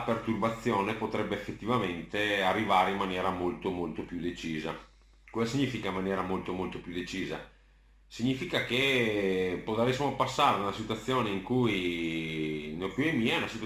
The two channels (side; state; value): both; identical; correlation 1.00